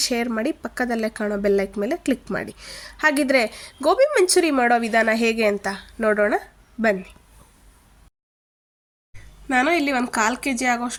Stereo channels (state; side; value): identical; both; correlation 1.00